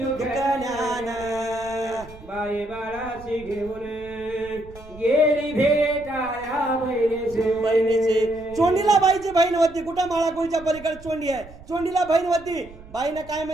बाई बाळाशी घेऊन गेली भेटाया बहिणीचे. चोंडीला बाईची बहीण होती. कुठं माळाकोळीच्या पलीकडे चोंडी आहे, चोंडीला बहीण होती. बाईनं काय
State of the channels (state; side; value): noise; right; rumble, 19 dB below the sound